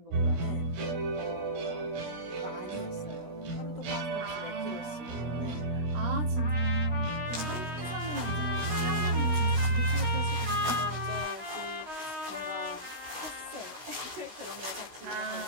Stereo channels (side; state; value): left; late; 16 ms